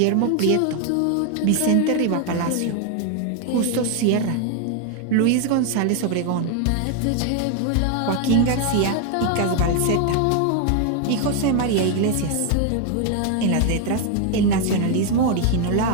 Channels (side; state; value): both; different; correlation 0.01